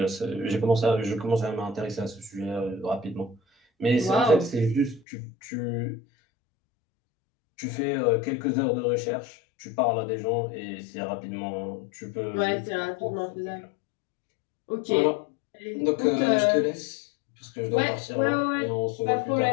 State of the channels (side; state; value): right; drops out; at 5.0 s